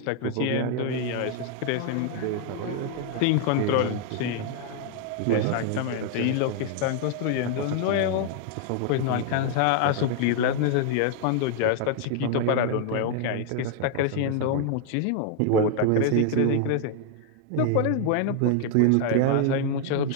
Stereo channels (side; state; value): both; different; correlation 0.00